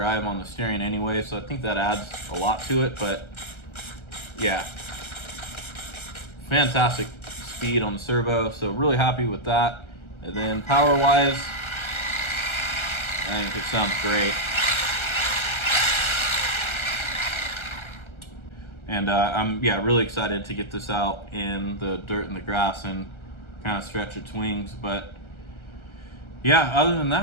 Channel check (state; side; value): late; right; 1.3 ms